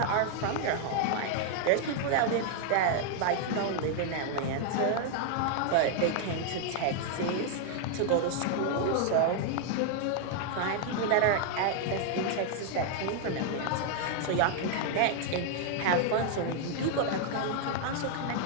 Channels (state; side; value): different; both; correlation 0.00